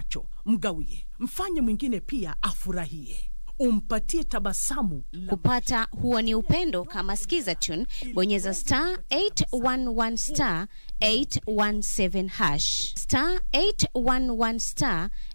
mgawie. Mfanye mwingine pia afurahie. Umpatie tabasamu. Kupata huo ni upendo, kama sikiza tune, bonyeza *811 *817#. *811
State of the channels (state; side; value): inverted; both; correlation -1.00